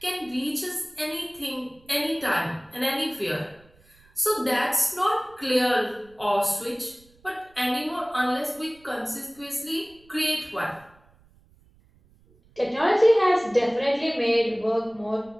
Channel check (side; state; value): right; noise; rumble, 30 dB below the sound